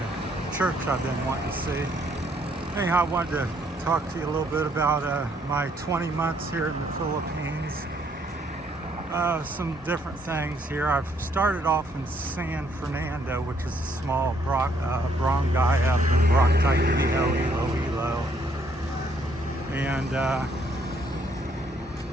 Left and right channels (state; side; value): normal; both; correlation 0.68